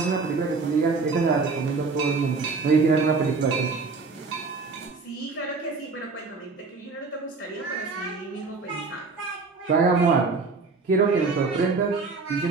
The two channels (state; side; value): quieter; left; 4.3 dB